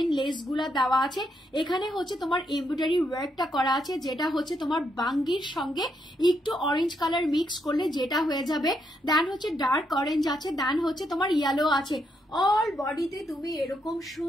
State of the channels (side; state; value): both; normal; correlation 0.78